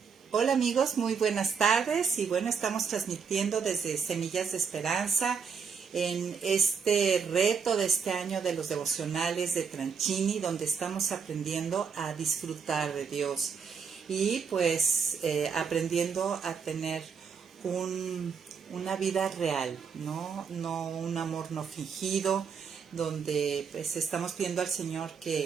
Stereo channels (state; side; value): quieter; left; 6.1 dB